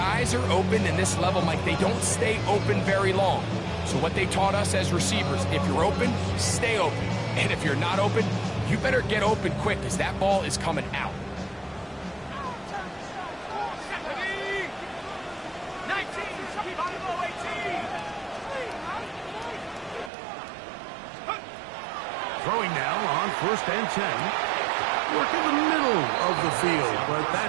are open in this level, Mike, they don't stay open very long. So what they taught us as receivers, if you're open, stay open. And if you're not open, you better get open quick because that ball is coming out. Throwing now on first and 10. Work in the middle of the field, but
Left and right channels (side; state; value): left; drops out; at 20.1 s